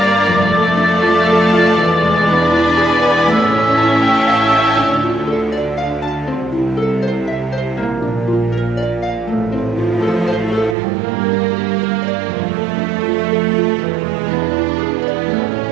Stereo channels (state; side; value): drops out; left; at 10.8 s